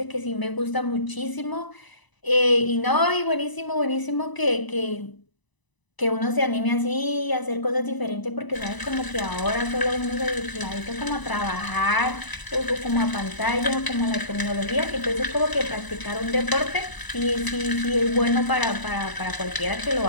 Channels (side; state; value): right; late; 1.0 ms